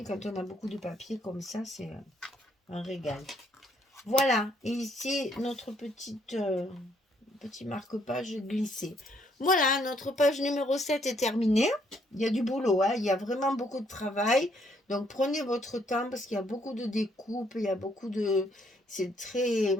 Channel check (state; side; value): normal; both; correlation 0.69